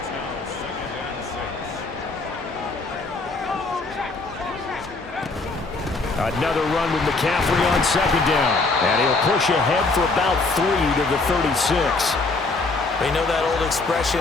Another run with McCaffrey on second down. And he'll push ahead for about 3 to the 36. You know that old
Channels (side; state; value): right; quieter; 3.6 dB